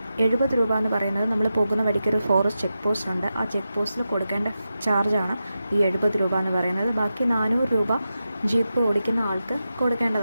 70 രൂപ എന്ന് പറയുന്നത് നമ്മൾ പോകുന്ന വഴിക്കൊരു ഫോറസ്റ്റ് ചെക്ക് പോസ്റ്റ് ഉണ്ട്. ആ ചെക്ക് പോസ്റ്റിൽ കൊടുക്കേണ്ട ചാർജാണ് ഈ 70 രൂപ എന്ന് പറയുന്നത്. ബാക്കി 400 രൂപ ജീപ്പ് ഓടിക്കുന്ന ആൾക്ക്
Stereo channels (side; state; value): both; inverted; correlation -0.90